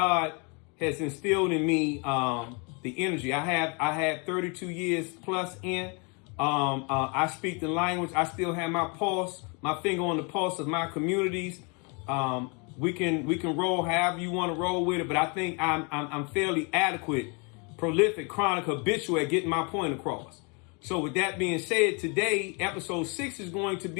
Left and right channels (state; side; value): quieter; right; 32.9 dB